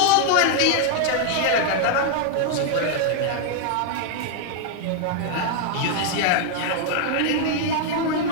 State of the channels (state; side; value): different; both; correlation 0.00